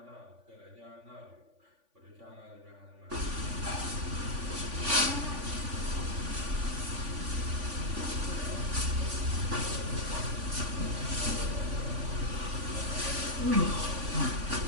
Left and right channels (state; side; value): late; left; 3.5 ms